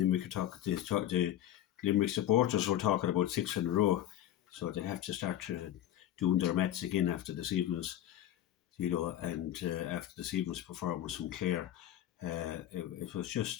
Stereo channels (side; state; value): right; quieter; 12.3 dB